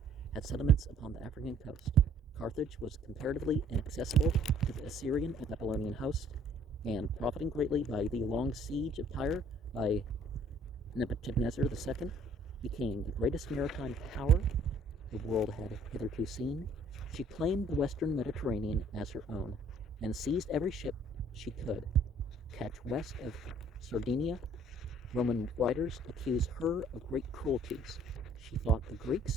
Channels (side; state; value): both; normal; correlation 0.58